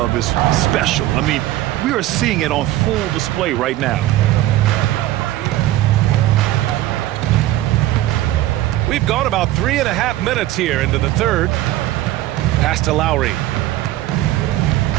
is special. I mean, we are seeing it on full display right now. We've gone about 3.5 minutes here into the third. Pass to Lowry.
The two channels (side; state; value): left; quieter; 15.1 dB